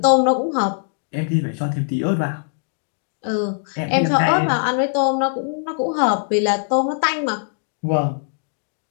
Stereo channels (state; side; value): silent; right; digital silence